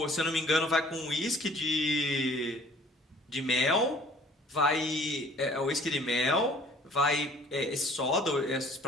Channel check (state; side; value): normal; both; correlation 0.54